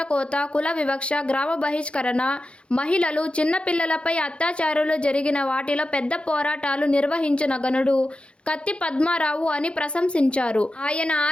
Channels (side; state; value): right; late; 0.058 ms